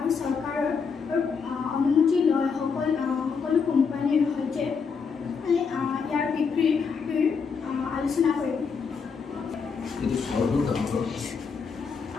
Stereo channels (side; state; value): right; quieter; 5.7 dB